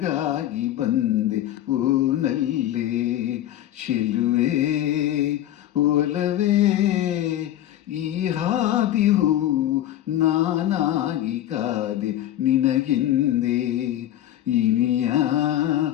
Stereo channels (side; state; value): right; quieter; 12.7 dB